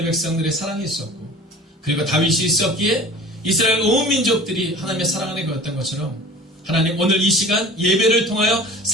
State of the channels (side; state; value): both; normal; correlation 0.41